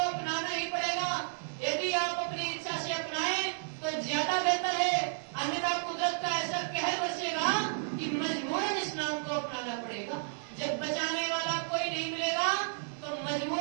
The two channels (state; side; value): silent; left; digital silence